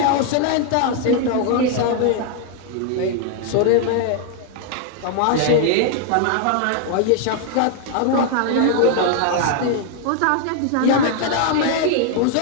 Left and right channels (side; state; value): both; different; correlation 0.00